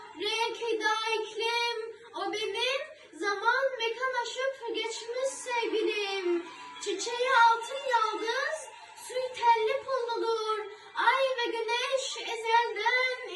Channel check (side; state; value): both; identical; correlation 1.00